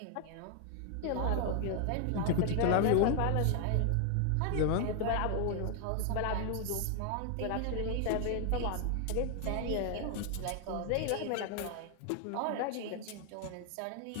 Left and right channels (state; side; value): different; both; correlation 0.00